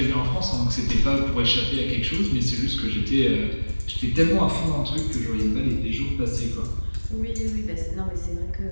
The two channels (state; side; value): inverted; both; correlation -1.00